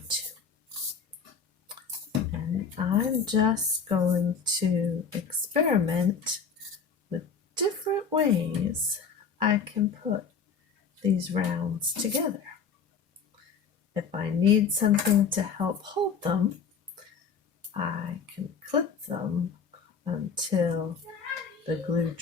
to. And I'm just going to experiment with different ways I can put these rounds together. If I need something to help hold them, I can clip them until the glue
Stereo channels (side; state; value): right; quieter; 5.8 dB